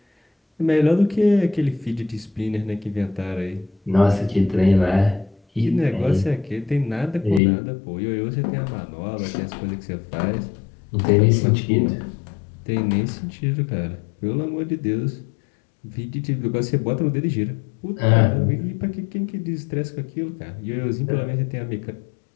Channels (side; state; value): right; drops out; at 7.4 s